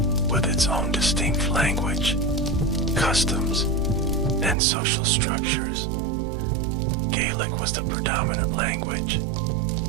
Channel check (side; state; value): left; drops out; at 4.5 s